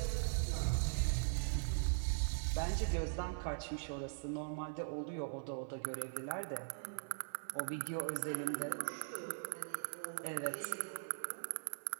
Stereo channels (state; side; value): silent; left; 50 dB below the other